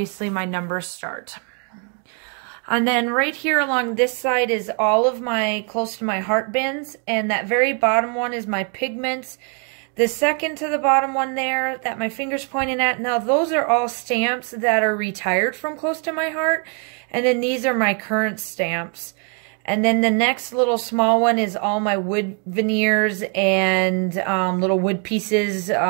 my numbers start. And then right here along this side is all of my close to my heart bins. And that very bottom one is my pigments. The second to the bottom one there that my finger's pointing at, now those are all stamps that are retired from close to my heart. And then these are my current stamps. And then the next little small one is all my wood veneers and little wood pieces,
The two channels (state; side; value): quieter; left; 37.4 dB